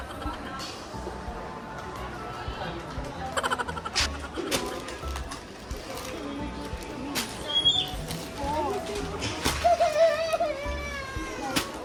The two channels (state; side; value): identical; both; correlation 1.00